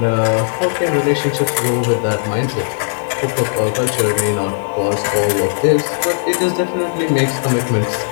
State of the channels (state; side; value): silent; right; 68 dB below the other